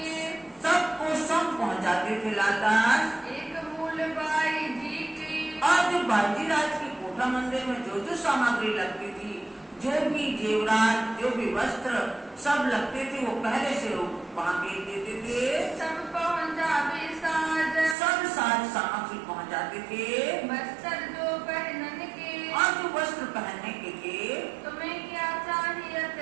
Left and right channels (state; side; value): drops out; left; at 17.9 s